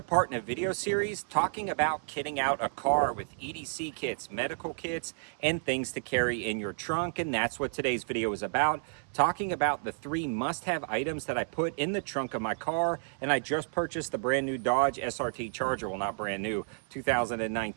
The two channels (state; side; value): silent; left; 57 dB below the other